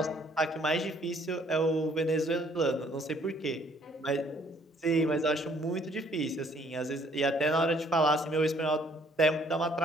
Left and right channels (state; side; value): normal; both; correlation 0.62